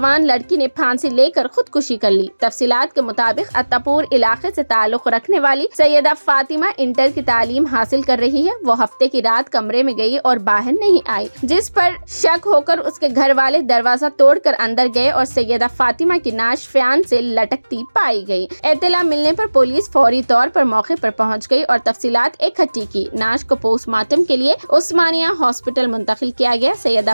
لڑکی نے پھانسی لے کر خودکشی کر لی۔ تفصیلات کے مطابق اتاپور علاقے سے تعلق رکھنے والی سیدہ فاطمہ انٹر کی تعلیم حاصل کر رہی ہے۔ وہ ہفتے کی رات کمرے میں گئی اور باہر نہیں آئی، جس پر شک ہو کر اس کے گھر والے دروازہ توڑ کر اندر گئے اور سیدہ فاطمہ کی نعش فیان سے لٹکتی پائی گئی۔ اطلاع ملنے پر پولیس فوری طور پر موقع پر پہنچ گئی اور تفصیلات اکٹھی کی۔ نعش کو پوسٹ مارٹم کے لیے عثمانیہ ہاسپٹل منتقل کیا گیا۔ سیدہ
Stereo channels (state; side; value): inverted; both; correlation -1.00